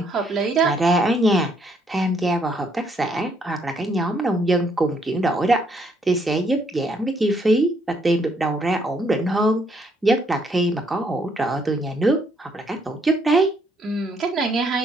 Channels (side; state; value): both; normal; correlation 0.70